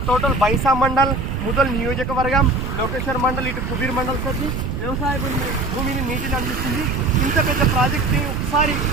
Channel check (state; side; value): noise; right; rumble, 4 dB below the sound